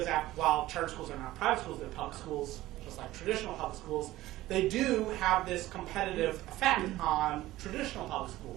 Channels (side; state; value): left; quieter; 16.3 dB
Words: while charter schools are not private schools, they're public schools, just like traditional public schools. They do have this competitive effect on traditional public